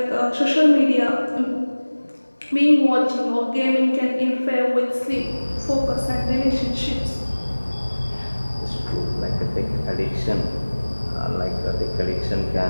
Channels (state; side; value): inverted; both; correlation -1.00